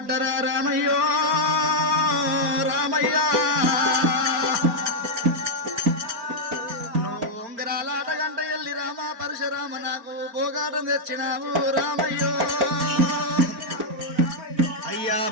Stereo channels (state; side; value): late; left; 4.4 ms